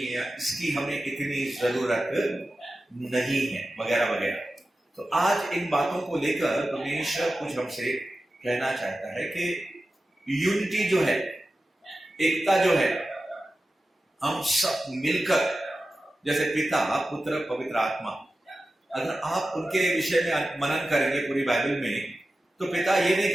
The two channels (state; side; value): normal; both; correlation 0.94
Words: या इसकी हमें इतनी जरूरत नहीं है, वगैरह वगैरह। तो आज इन बातों को लेकर परमेश्वर कुछ हमसे कहना चाहता है कि यूनिटी जो है, एकता जो है, हम सब मिलकर, जैसे पिता पुत्र पवित्र आत्मा, अगर आप उनके विषय में मनन करेंगे पूरी बाइबल में, तो पिता ये नहीं